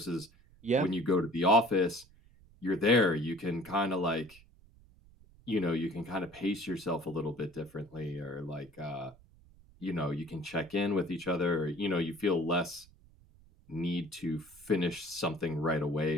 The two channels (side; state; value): right; noise; rumble, 26 dB below the sound